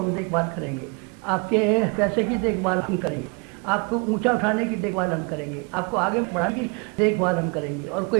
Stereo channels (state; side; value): quieter; left; 33.2 dB